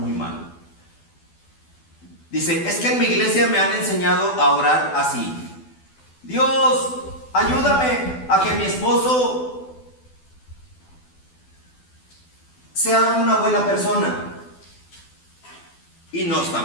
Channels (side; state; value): right; late; 12 ms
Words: mal. Dice: es que en mi iglesia me han enseñado a orar así: Dios, ayúdame a que mi esposo sea una buena persona. Y no está